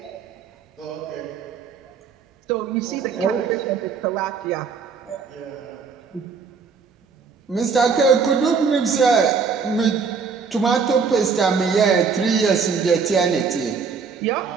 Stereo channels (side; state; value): left; quieter; 5.5 dB